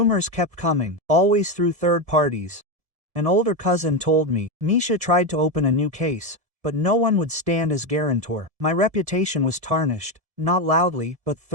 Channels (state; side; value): late; left; 1.7 ms